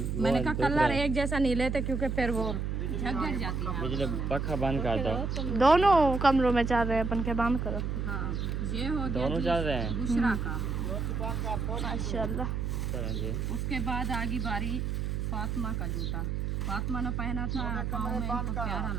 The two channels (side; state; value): right; noise; hum, 1 dB below the sound